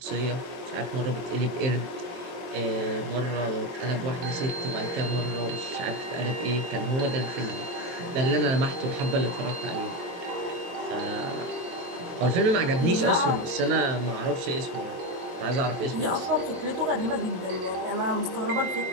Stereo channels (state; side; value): late; left; 23 ms